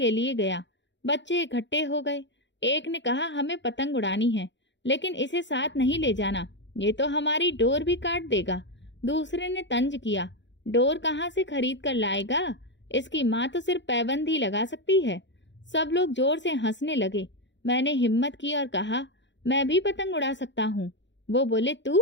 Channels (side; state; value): right; late; 0.53 ms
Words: लिए गया। बच्चे इकट्ठे हो गए। एक ने कहा, हमें पतंग उड़ानी है लेकिन इसे साथ नहीं ले जाना, ये तो हमारी डोर भी काट देगा। दूसरे ने तंज किया, डोर कहाँ से खरीद कर लाएगा, इसकी माँ तो सिर्फ पैबंद ही लगा सकती है। सब लोग जोर से हंसने लगे। मैंने हिम्मत की और कहा, मैं भी पतंग उड़ा सकता हूँ। वो बोले,